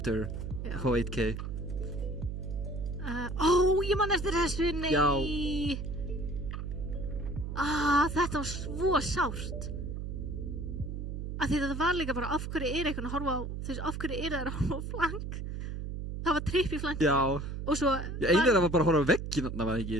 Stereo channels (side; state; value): right; noise; hum, 5 dB below the sound